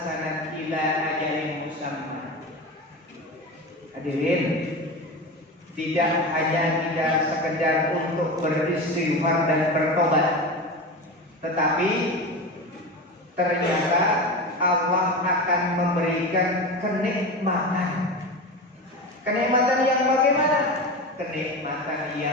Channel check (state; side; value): normal; both; correlation 0.25